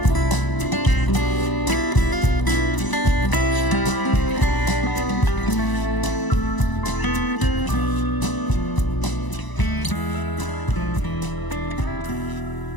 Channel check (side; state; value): right; late; 1.0 ms